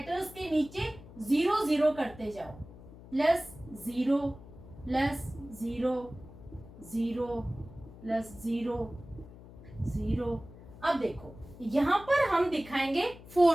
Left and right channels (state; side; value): noise; left; hum, 18 dB below the sound